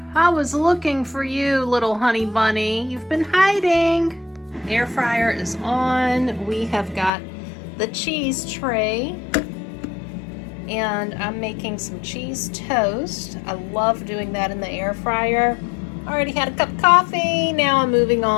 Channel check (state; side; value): drops out; right; at 7.1 s